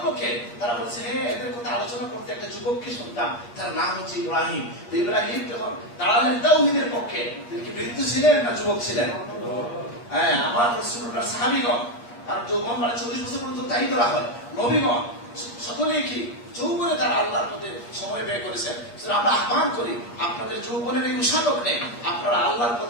কে, তারা বলছে হ্যাঁ এদের কথা আলোচনা করতে একটা যুবককে শুনতাম, তার নাম হচ্ছে ইব্রাহিম। তো ইব্রাহিম যখন দাঁড়ালেন তাওহীদের পক্ষে, তিনি কি বৃদ্ধ ছিলেন না যুবক ছিলেন? হ্যাঁ, আমার রাসূলুল্লাহর সাহাবীগণ, আর যৌবন মানে 40 বছর পর্যন্ত তাই ধরা হয়, নবীগণ সকলেই কি যৌবনে তারা আল্লাহর পথে সময় ব্যয় করেছেন। আমরা আহ্বান করি আপনাদের যৌবনের এই উষাদক নেই, আপনারা আল্লাহর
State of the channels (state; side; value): late; right; 8.4 ms